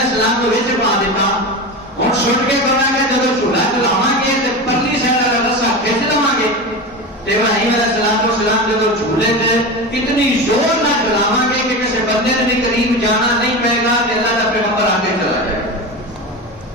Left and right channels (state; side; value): normal; both; correlation 0.24